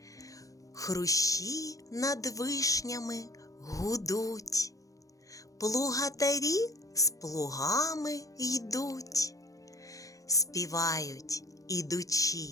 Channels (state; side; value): late; right; 0.16 ms